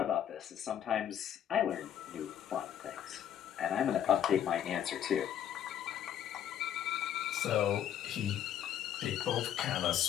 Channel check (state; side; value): quieter; right; 10.0 dB